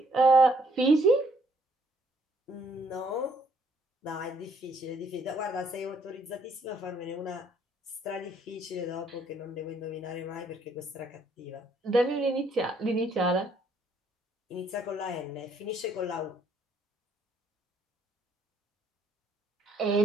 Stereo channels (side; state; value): both; normal; correlation 0.66